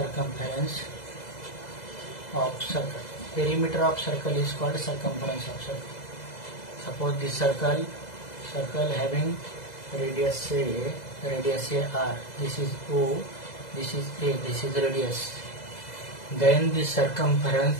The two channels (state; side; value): late; right; 2.0 ms